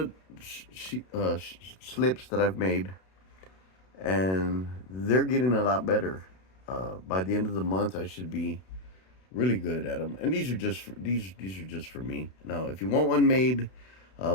slips that I've made, and they're getting a lot better. By the end of the month, I should be really good at them. And these are just these are just for me. Now, if you want one made,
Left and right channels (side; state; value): right; late; 32 ms